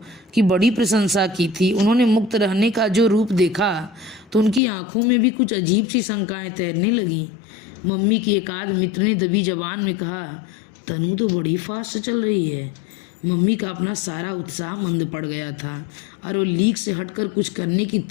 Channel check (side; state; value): right; drops out; at 4.6 s